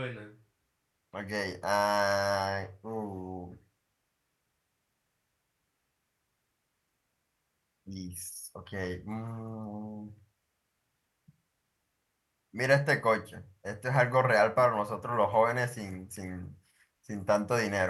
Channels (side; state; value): both; identical; correlation 1.00